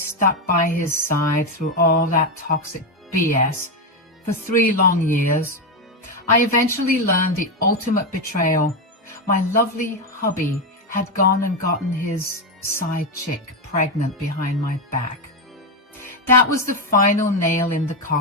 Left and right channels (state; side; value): normal; both; correlation 0.08